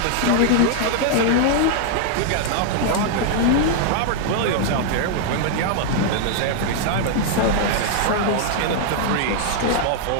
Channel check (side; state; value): both; different; correlation 0.00